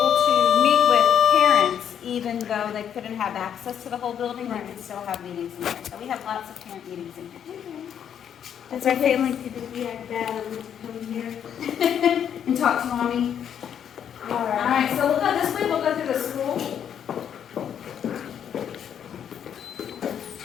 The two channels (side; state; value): right; quieter; 8.9 dB